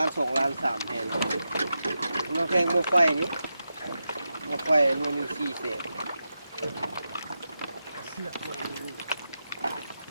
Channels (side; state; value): both; inverted; correlation -0.89